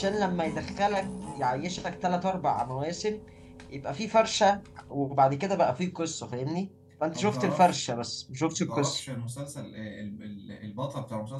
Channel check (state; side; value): identical; both; correlation 1.00